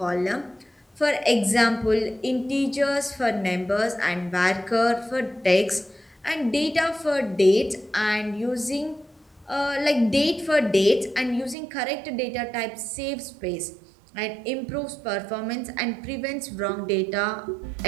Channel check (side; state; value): left; drops out; at 11.6 s